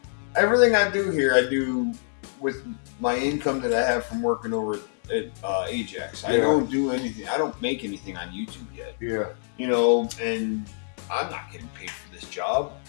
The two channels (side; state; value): right; silent; digital silence